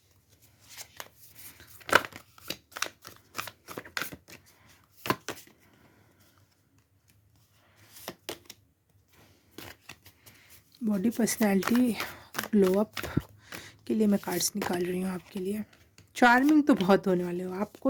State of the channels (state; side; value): identical; both; correlation 1.00